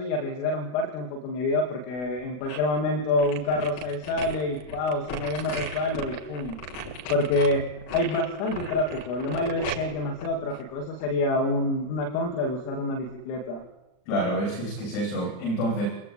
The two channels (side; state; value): right; late; 40 ms